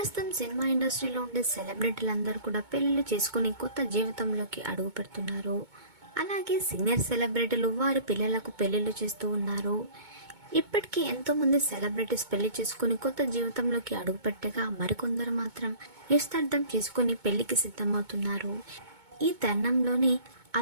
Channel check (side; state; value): left; late; 2.2 ms